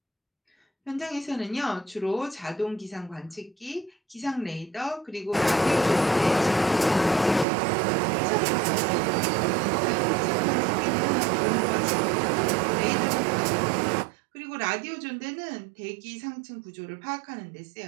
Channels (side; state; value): left; drops out; at 7.5 s